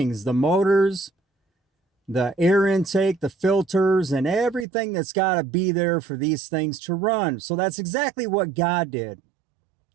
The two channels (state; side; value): drops out; left; at 4.7 s